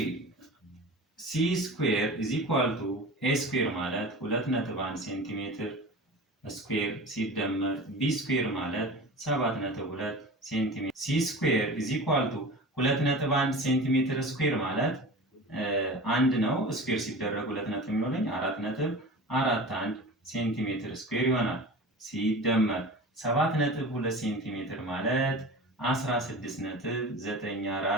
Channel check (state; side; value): normal; both; correlation 0.34